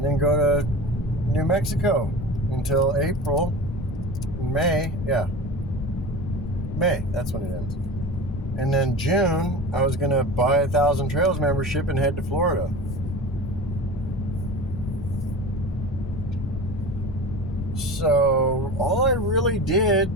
then go to New Mexico until April. May, that's when it ends. And then June, I was going to buy a Thousand Trails membership and head to Florida. So all I really did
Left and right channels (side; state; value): left; noise; rumble, 7 dB below the sound